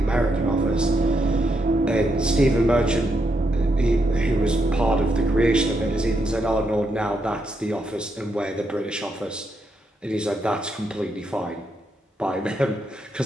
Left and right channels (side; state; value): both; normal; correlation 0.80